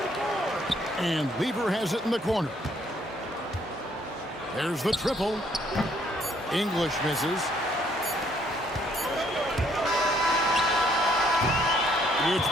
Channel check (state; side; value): normal; both; correlation 0.66